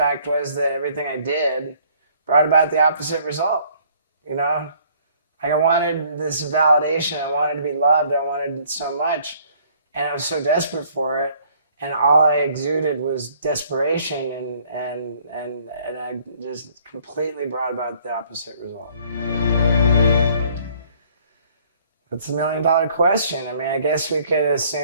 was that everything I did brought about the opposite result, you know? Like I wanted this validation, I wanted to be loved, I wanted it so much, and I was so desperate for it, and all I exuded was desperation, and I just completely brought about the opposite result. That's $1 million question. I mean, I guess we could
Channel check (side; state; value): both; inverted; correlation -0.60